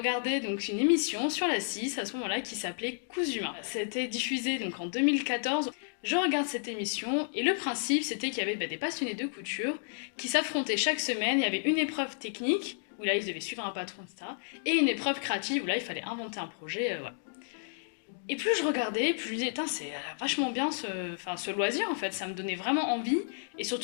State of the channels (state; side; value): silent; right; digital silence